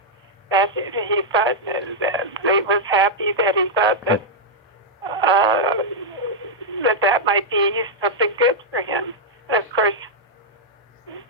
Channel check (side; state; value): both; normal; correlation -0.05